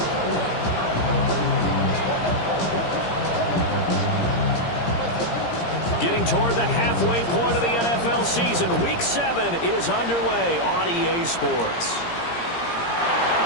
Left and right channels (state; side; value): late; right; 17 ms